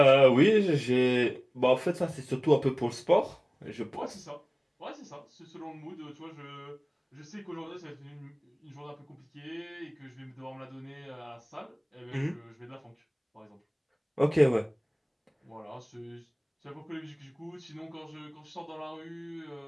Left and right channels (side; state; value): both; identical; correlation 1.00